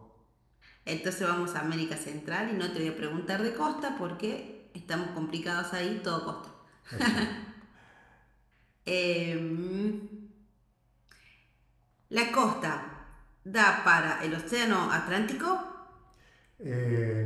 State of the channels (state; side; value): identical; both; correlation 1.00